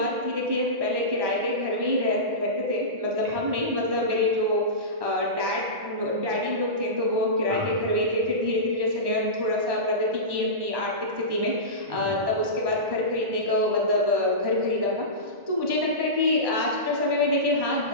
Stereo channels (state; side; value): late; left; 1.1 ms